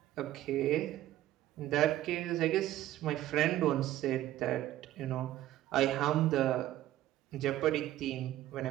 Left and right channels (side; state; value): left; quieter; 14.1 dB